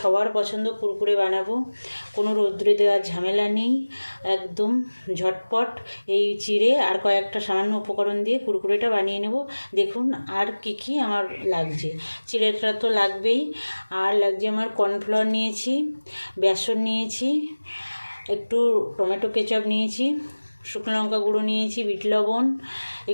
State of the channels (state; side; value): inverted; both; correlation -1.00